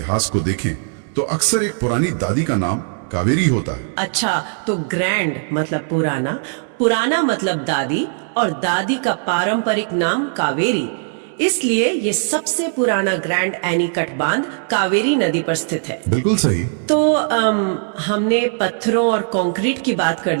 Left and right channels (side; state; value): left; silent; 66 dB below the other